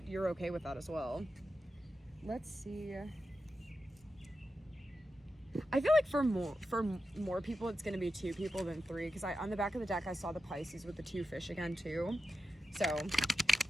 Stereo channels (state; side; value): normal; both; correlation 0.90